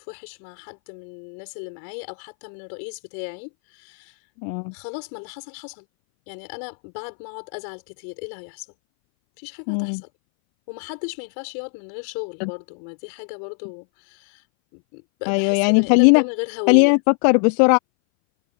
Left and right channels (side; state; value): right; silent; 60 dB below the other